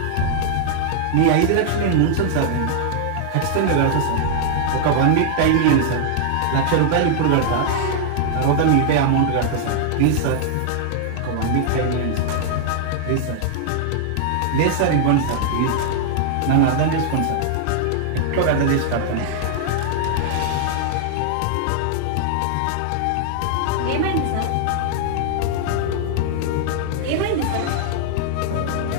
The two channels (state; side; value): different; both; correlation -0.01